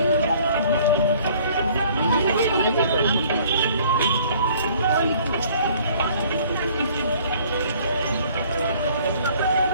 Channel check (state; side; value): inverted; both; correlation -0.56